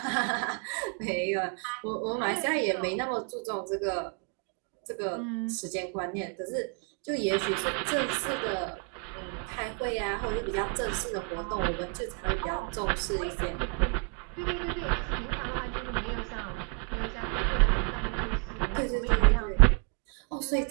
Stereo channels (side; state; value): left; quieter; 35.7 dB